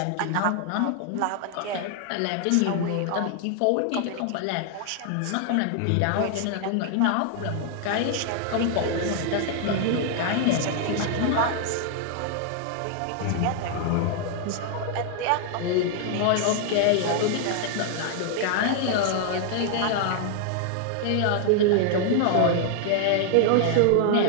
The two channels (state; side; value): different; both; correlation 0.00